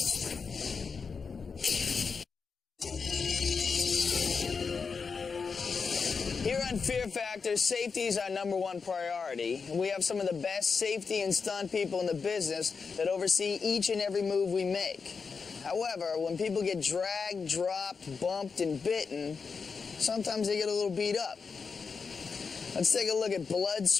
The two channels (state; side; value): quieter; right; 5.3 dB